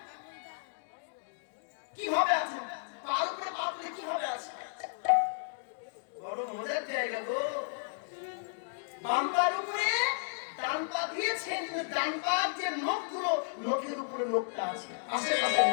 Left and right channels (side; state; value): right; silent; digital silence